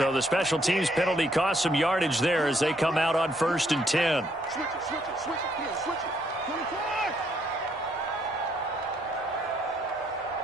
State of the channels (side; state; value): both; normal; correlation 0.70